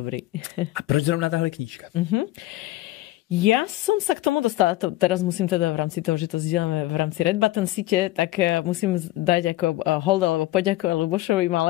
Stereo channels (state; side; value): quieter; right; 17.1 dB